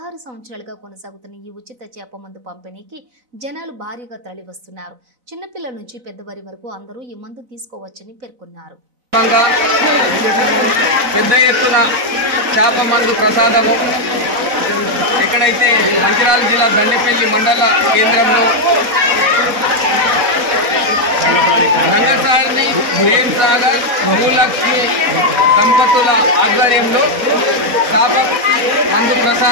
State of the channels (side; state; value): left; late; 4.0 ms